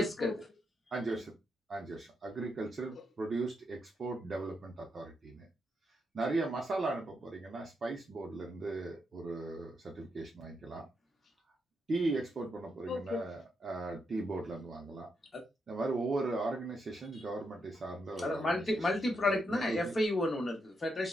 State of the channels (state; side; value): normal; both; correlation 0.81